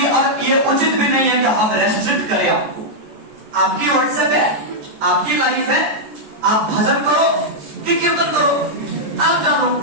और ये उचित भी नहीं है कि हम रेस्ट्रिक्ट करें आपको। आपकी व्हाट्सएप है, आपकी लाइफ है, आप भजन करो कि कीर्तन करो, आप जानो,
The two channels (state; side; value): late; left; 14 ms